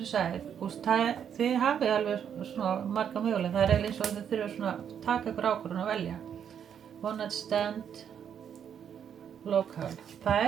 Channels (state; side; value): quieter; left; 8.4 dB